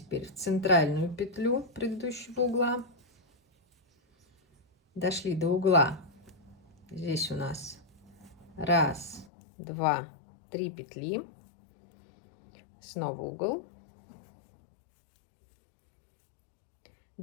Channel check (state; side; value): drops out; right; at 9.2 s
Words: в центральную петлю предыдущего угла. Дошли до угла. Здесь у нас 1, 2, 3 петли. Снова угол.